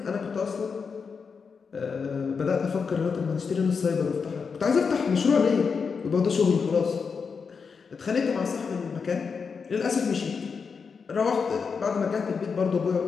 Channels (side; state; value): right; quieter; 5.6 dB